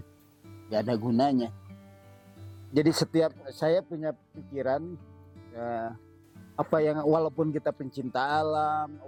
nggak ada gunanya. Jadi setiap saya punya pikiran apa yang walaupun kita pencinta alam,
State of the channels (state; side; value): identical; both; correlation 1.00